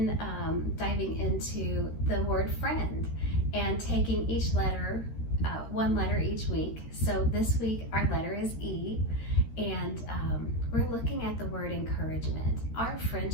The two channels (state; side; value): late; right; 13 ms